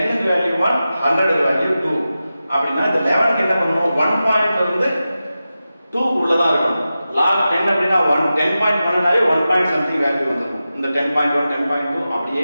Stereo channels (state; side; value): inverted; both; correlation -0.93